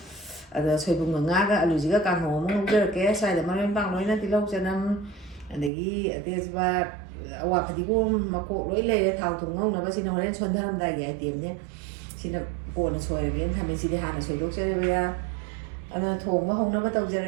ꯑꯗ ꯁꯣꯏꯕꯨꯝꯒ ꯉꯥꯒ ꯑꯂꯨꯁꯤꯒ ꯀꯥꯡꯍꯧ ꯑꯃ ꯉꯧꯖꯔꯛꯀꯦ ꯁ꯭ꯋꯥꯏꯗ ꯃꯔꯣꯏ ꯃꯄꯥꯡ ꯂꯣꯏꯅ ꯇꯤꯜꯍꯧ ꯆꯅꯝ ꯑꯗꯒꯤ ꯑꯇꯦꯁꯄꯥꯠ ꯑꯋꯥ ꯐꯗꯤꯒꯣꯝ ꯃꯀꯣꯛ ꯂꯣꯏ ꯂꯩꯔꯦ ꯊꯥꯎ ꯊꯨꯝ ꯉꯧꯅꯕ ꯁꯤꯅ ꯍꯣꯔꯦꯟ ꯁꯣꯟꯊꯔꯝꯗꯥꯏꯒꯤ ꯑꯥꯏꯇꯦꯝꯅꯦ ꯁꯤꯅ ꯀꯣꯟꯅ ꯁꯣꯏꯔꯒꯦꯅ ꯊꯝꯃꯦ ꯁꯤꯗꯤ ꯍꯥꯟꯅ ꯁꯣꯏꯗꯣꯛꯆꯔꯦꯕ ꯑꯗꯨꯅ ꯊꯣꯡꯕ ꯍꯧꯅꯕ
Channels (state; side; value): drops out; left; at 5.7 s